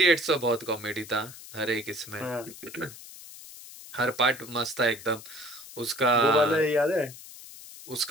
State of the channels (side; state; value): left; noise; hiss, 16 dB below the sound